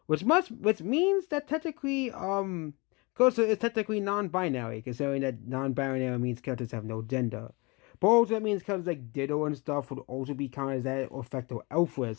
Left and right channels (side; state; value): right; quieter; 27.5 dB